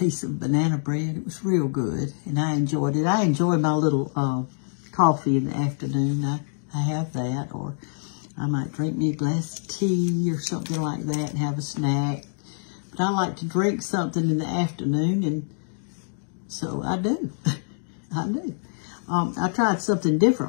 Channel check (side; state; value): right; silent; digital silence